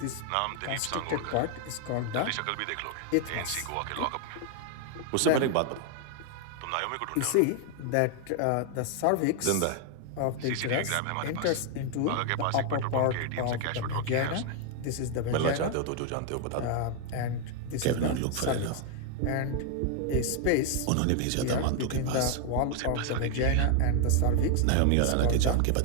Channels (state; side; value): different; both; correlation 0.00